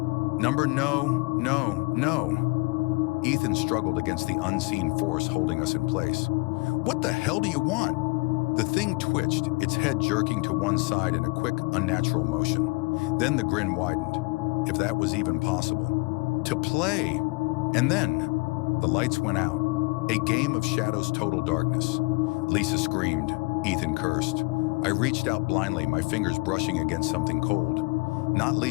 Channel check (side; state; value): right; quieter; 27.7 dB